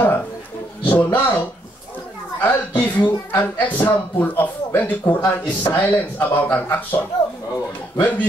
So now, I'll give you an example of when the Quran is silent about an action. When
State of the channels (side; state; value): both; normal; correlation 0.73